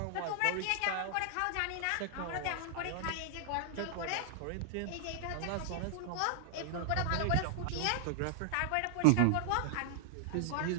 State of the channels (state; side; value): different; both; correlation 0.00